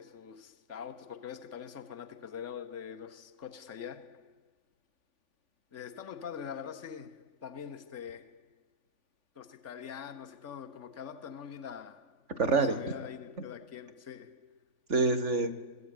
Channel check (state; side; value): late; left; 3.5 ms